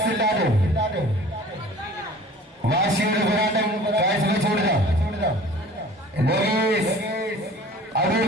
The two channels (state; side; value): normal; both; correlation 0.46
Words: വാശിയുടെ പോരാട്ടം കാഴ്ചവെച്ചുകൊടുത്ത അടൂർ